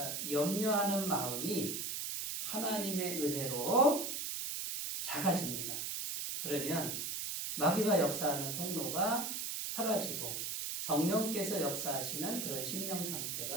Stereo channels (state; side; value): noise; right; hiss, 3 dB below the sound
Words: 염려하는 마음이 하나님의 은혜로 작아집니다. 그러면 마귀가 역사하는 통로가 사라지고 성령께서 역사하시는 그런 심령